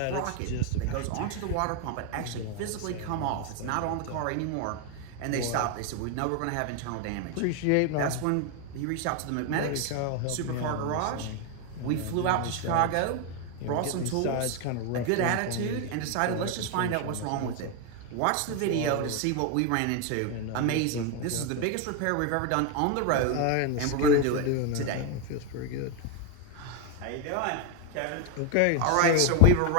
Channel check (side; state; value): both; different; correlation 0.01